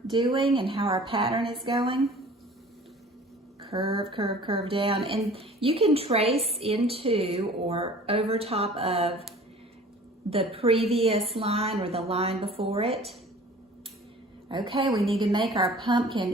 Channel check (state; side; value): normal; both; correlation 0.47